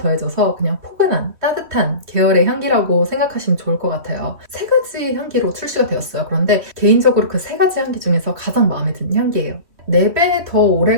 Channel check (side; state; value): left; late; 3.2 ms